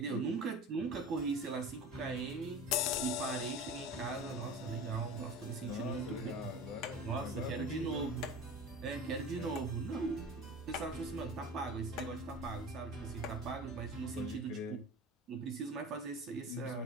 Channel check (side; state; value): both; normal; correlation 0.35